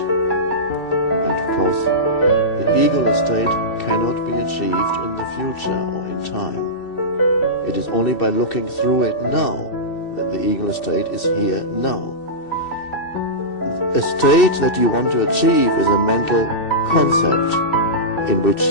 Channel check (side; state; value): right; late; 2.7 ms